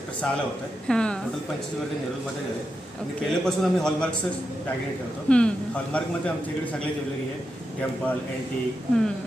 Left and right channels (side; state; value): both; normal; correlation 0.87